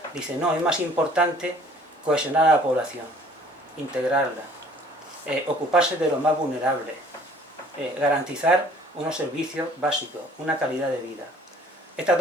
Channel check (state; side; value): normal; both; correlation 0.54